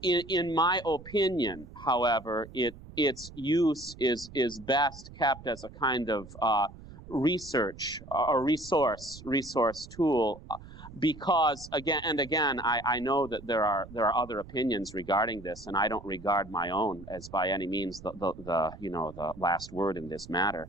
In my opinion, however, its use is best kept as a kind of research or resource tool. Because again, I know that there are other opinions regarding this, and I don't regard my own as by any means the last word in this matter.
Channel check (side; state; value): right; noise; rumble, 17 dB below the sound